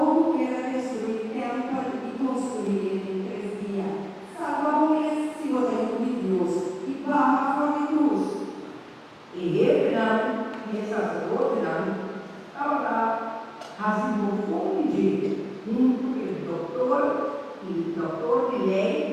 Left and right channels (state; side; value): identical; both; correlation 1.00